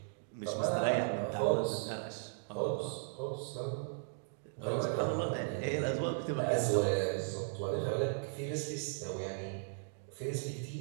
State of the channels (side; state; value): left; silent; digital silence